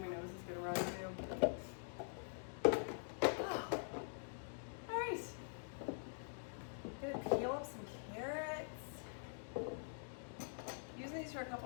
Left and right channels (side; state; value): right; silent; digital silence